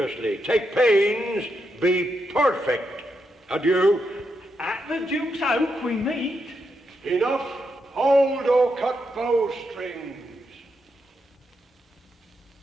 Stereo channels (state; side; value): normal; both; correlation 0.83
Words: Take pains, be perfect. Adieu. At the Duke's Oak we meet. Enough. Hold or cut bowstrings.